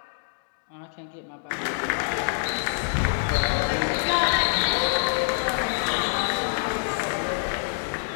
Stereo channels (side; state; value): right; silent; digital silence